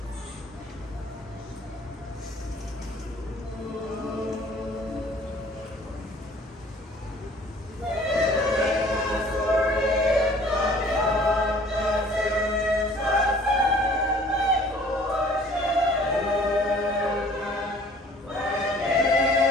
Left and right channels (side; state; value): both; normal; correlation 0.53